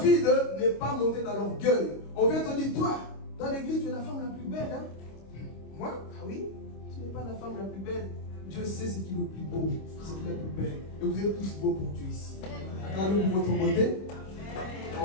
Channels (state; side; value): late; right; 26 ms